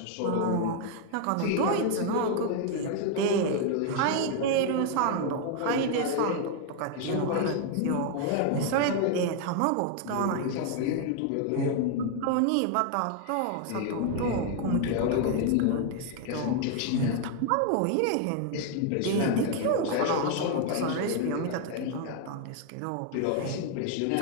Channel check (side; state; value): both; different; correlation 0.00